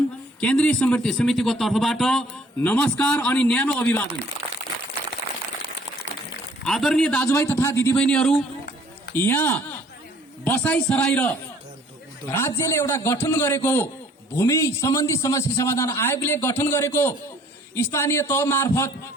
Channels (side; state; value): both; normal; correlation 0.57